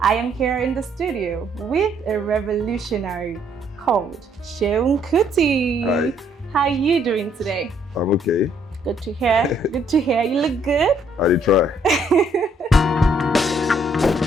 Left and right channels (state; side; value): normal; both; correlation 0.68